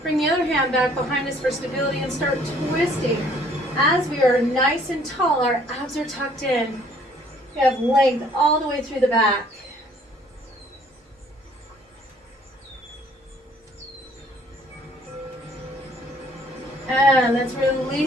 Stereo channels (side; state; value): both; normal; correlation 0.60